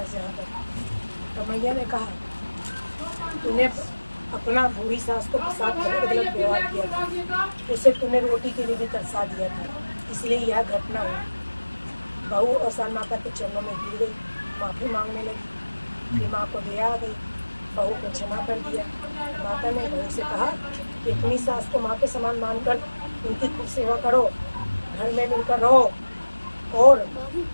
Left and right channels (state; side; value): inverted; both; correlation -1.00